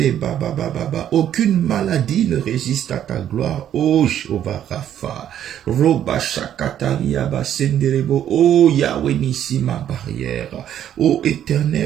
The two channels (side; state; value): left; quieter; 10.5 dB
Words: Aucune maladie ne résiste à ta gloire. Oh Jehovah Rapha, Roba Shakataria Basenderebo, oh Yahweh Nissi ma barrière, oh